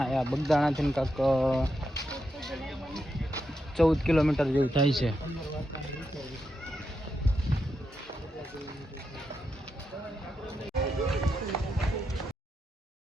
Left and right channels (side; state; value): both; normal; correlation 0.85